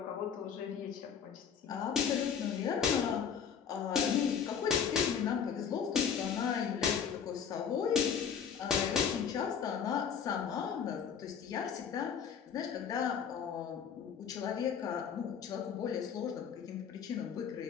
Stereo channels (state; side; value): quieter; right; 7.4 dB